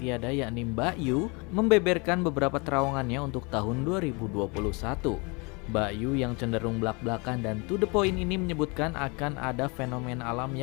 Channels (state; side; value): quieter; right; 29.8 dB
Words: yakni Mbak Yu membeberkan beberapa terawangannya untuk tahun 2021. Mbak Yu yang cenderung belak-belakan dan to the point ini menyebutkan akan ada fenomena alam